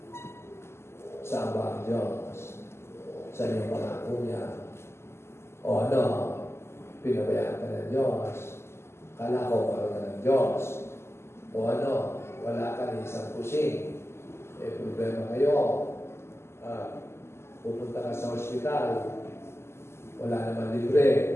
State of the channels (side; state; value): right; late; 0.12 ms